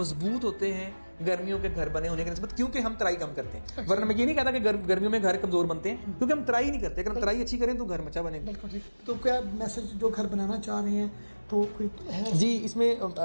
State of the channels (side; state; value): both; inverted; correlation -1.00